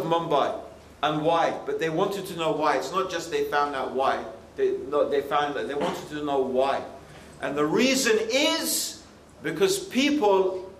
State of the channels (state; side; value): identical; both; correlation 1.00